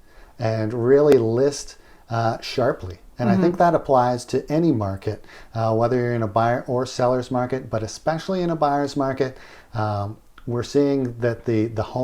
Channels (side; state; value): both; identical; correlation 1.00